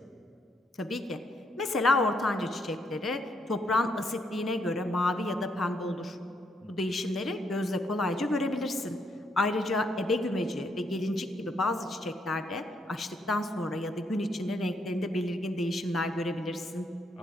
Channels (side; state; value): both; normal; correlation 0.74